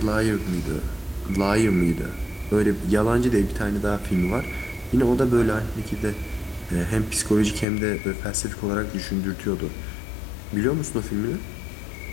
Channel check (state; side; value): drops out; right; at 7.7 s